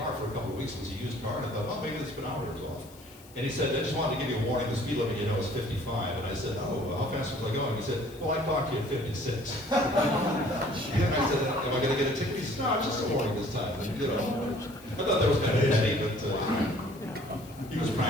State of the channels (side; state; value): left; noise; hiss, 23 dB below the sound